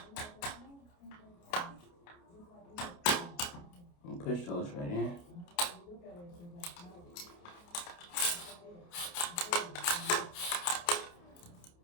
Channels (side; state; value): right; late; 29 ms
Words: And push those right in.